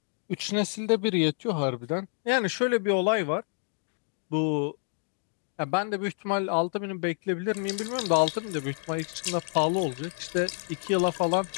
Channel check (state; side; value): silent; right; 59 dB below the other